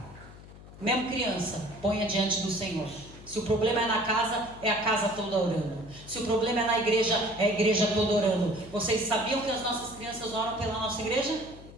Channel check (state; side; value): noise; left; hum, 18 dB below the sound